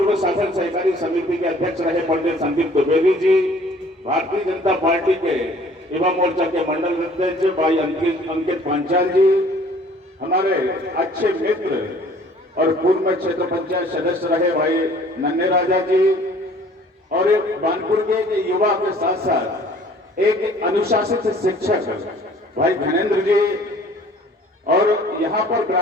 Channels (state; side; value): normal; both; correlation 0.53